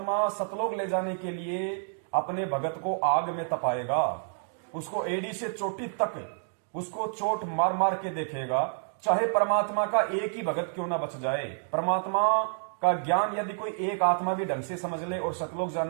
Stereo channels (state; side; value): silent; left; digital silence